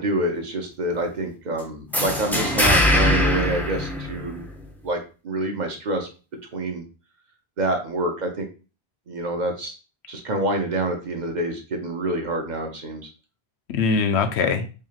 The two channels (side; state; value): both; normal; correlation 0.17